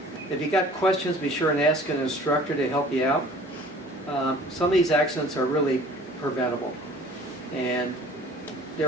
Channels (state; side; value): normal; both; correlation 0.48